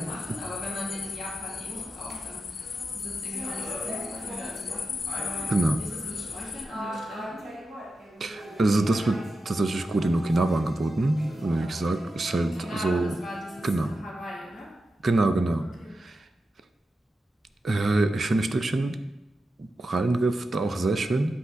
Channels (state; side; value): normal; both; correlation 0.90